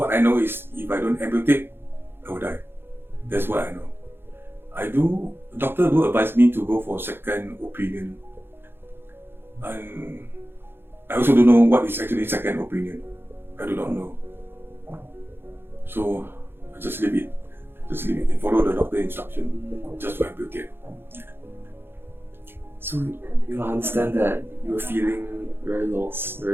I know is if I don't amputate, I will die. That's what I know. Doctor do advise me to go for second opinion, and I also don't know what is actually second opinion. I do not know. So I just leave it and follow the doctor instruction just to amputate. So I understand that you were feeling very lost,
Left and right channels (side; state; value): left; late; 0.10 ms